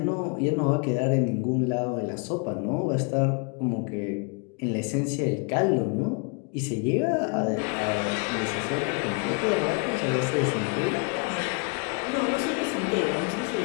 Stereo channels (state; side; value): quieter; right; 34.6 dB